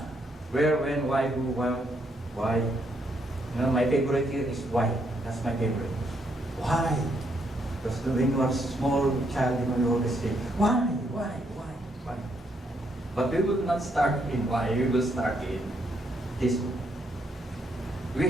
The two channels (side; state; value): both; normal; correlation 0.75